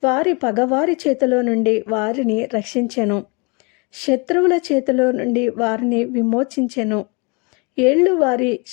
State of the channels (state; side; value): quieter; right; 31.2 dB